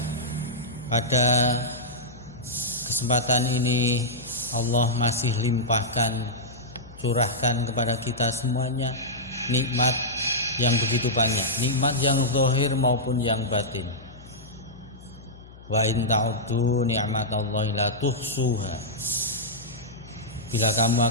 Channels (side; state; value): left; noise; hum, 20 dB below the sound